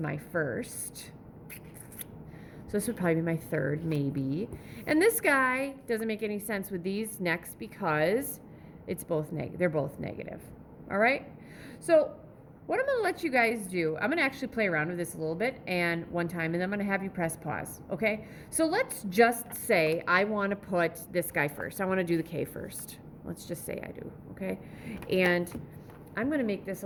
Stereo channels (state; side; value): identical; both; correlation 1.00